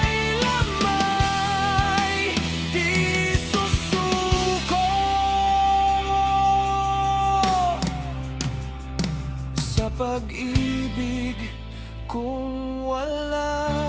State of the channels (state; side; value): identical; both; correlation 1.00